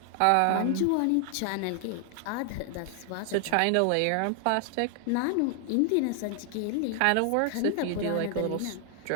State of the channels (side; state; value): both; different; correlation 0.00